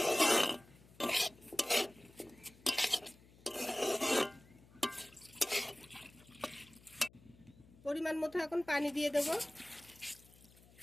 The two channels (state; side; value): noise; left; hum, 25 dB below the sound